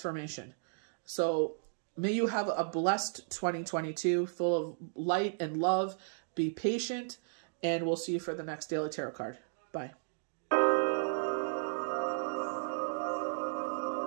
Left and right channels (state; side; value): silent; left; digital silence